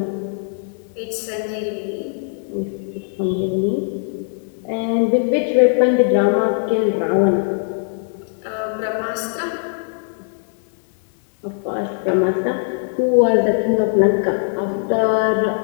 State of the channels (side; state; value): right; silent; digital silence